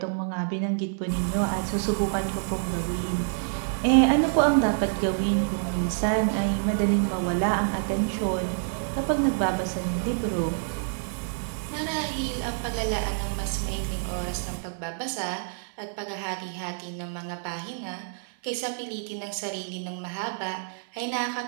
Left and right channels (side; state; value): left; silent; 60 dB below the other